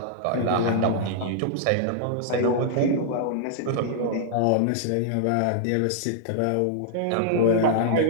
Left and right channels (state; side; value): different; both; correlation -0.01